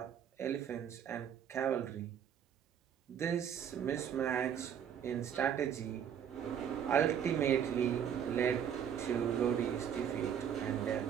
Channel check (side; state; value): left; quieter; 8.7 dB